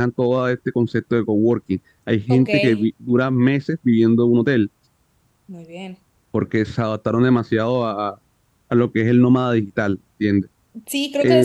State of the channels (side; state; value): both; identical; correlation 1.00